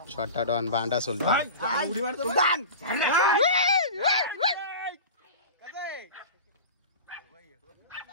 छोटा डॉन, बांडा सुलतान।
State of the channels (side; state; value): both; inverted; correlation -0.32